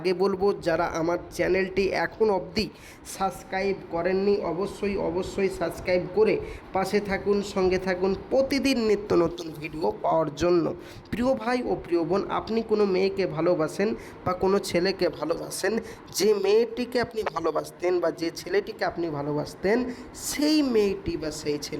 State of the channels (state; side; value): identical; both; correlation 1.00